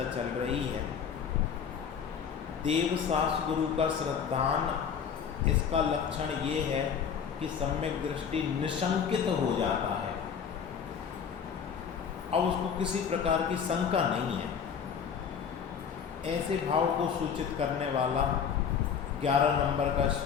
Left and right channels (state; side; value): quieter; right; 7.2 dB